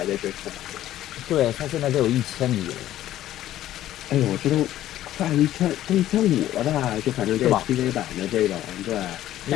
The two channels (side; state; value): right; quieter; 13.3 dB